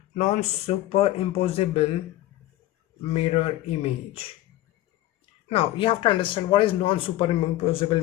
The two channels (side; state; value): right; quieter; 15.3 dB